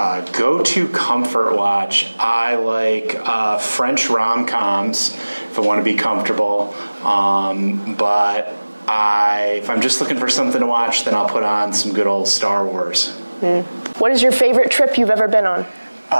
Go-to comfort watch. I like French rom-coms if I want to be comfortable. But if I'm just looking for something to watch, then I'll put on some good old Star Wars. What is your favorite trip you've ever been on?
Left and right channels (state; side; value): inverted; both; correlation -1.00